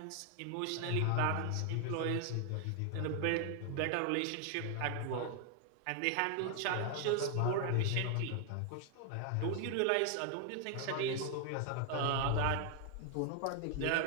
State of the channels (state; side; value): different; both; correlation 0.00